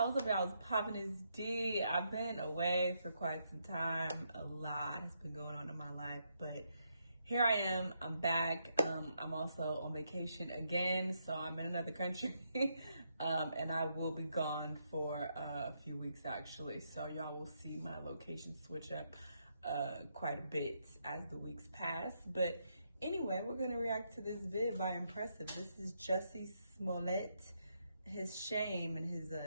up, y'all? It's popping is D. I've been away for quite some time. A lot has been going on in my life, but here I am. I'm back. I'm also on vacation again, so I'm in another country, and I will be gone for a few weeks actually. So y'all will see my location switch up quite a bit as the weeks pass. But anyway, we're gonna react to this vid by Impressive. This is Jussie Smollett. His shame and his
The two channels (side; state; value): both; inverted; correlation -0.79